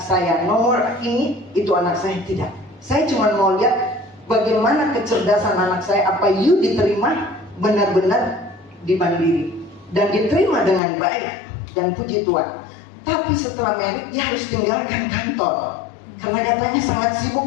saya, nomor ini itu anak saya, tidak. Saya cuma mau lihat bagaimana kecerdasan anak saya, apa you diterima benar-benar di Mandiri dan diterima dengan baik, dan puji Tuhan. Tapi setelah merit dia harus tinggalkan kantor karena katanya sangat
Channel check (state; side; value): drops out; right; at 10.8 s